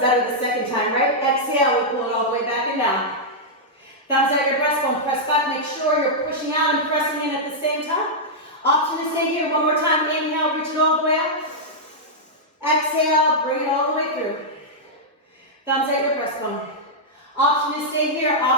better the second time, right? Exhale, we pull it all the way back and down. Thumbs out your breastbone, press back, make sure you're pushing out and pressing in at the same time. Option to stay here, one more time. Inhale, reach it all the way up. Exhale, bring it all the way through. Thumbs out your breastbone. Option to stay here,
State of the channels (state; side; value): normal; both; correlation -0.08